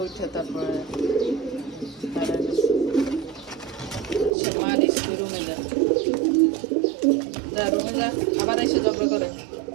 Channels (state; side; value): drops out; left; at 4.3 s